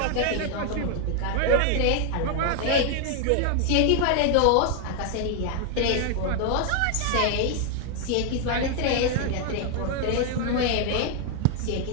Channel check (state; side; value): different; both; correlation 0.00